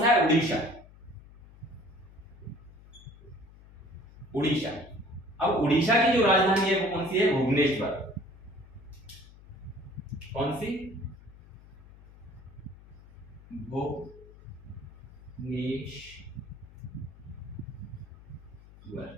है, उड़ीसा। उड़ीसा। अब उड़ीसा की जो राजधानी है वो कौन सी है, भुवनेश्वर। कौन सी, भुवनेश्वर,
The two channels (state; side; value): noise; left; hum, 21 dB below the sound